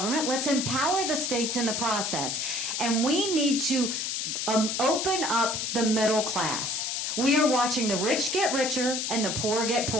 Let's empower the states in the process. And we need to open up the middle class. We are watching the rich get richer and the poor get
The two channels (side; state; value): left; noise; hiss, 1 dB below the sound